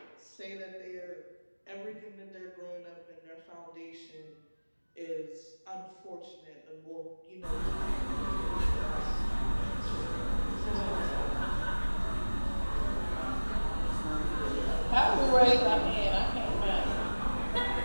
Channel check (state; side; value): inverted; both; correlation -1.00